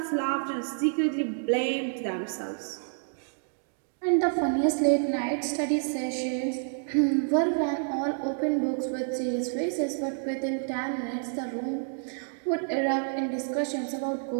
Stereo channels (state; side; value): silent; left; digital silence